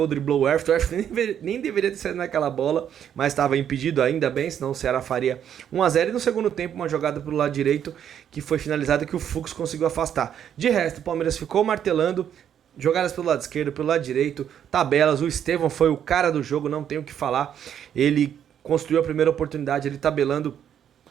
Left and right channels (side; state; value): left; quieter; 9.3 dB